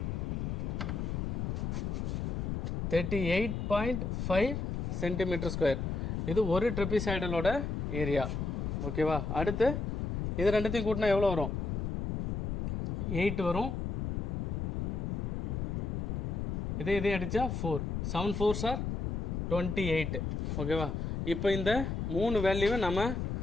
38.5 cm². இது ஒரு ட்ரெபிசாய்டலோட ஏரியா. ஓகேவா? அடுத்து இது ரெண்டுத்தையும் கூட்டினா எவ்வளோ வரும் 8 வரும். இதே அடித்தா 4 7 4s are 28. ஓகேவா? இப்போ இந்த 3 வேல்யூவை நம்ம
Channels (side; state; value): left; noise; rumble, 1 dB below the sound